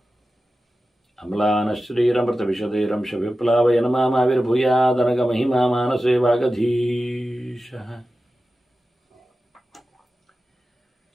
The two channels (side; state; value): both; normal; correlation 0.94